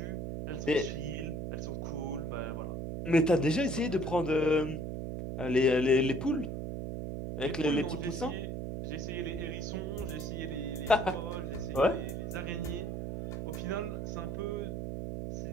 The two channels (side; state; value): right; noise; hum, 4 dB below the sound